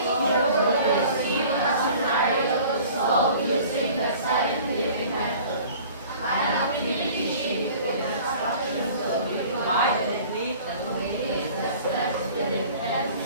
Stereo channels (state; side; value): inverted; both; correlation -0.47